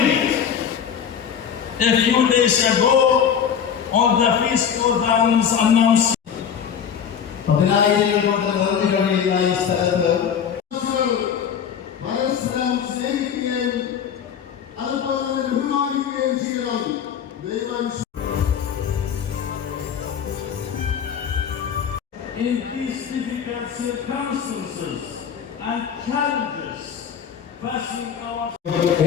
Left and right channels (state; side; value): quieter; right; 8.0 dB